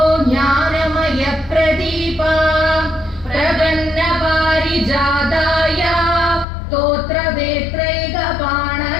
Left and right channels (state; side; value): drops out; right; at 6.5 s